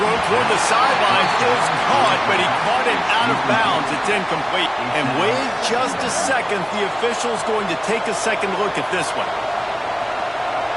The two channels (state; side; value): identical; both; correlation 1.00